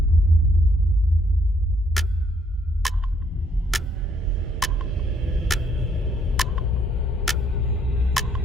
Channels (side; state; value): both; normal; correlation 0.69